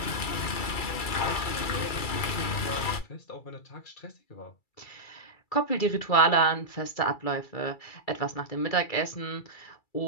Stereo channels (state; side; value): late; right; 2.3 ms